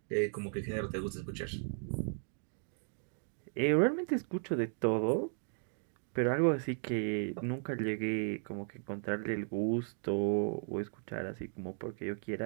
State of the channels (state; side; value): silent; left; 54 dB below the other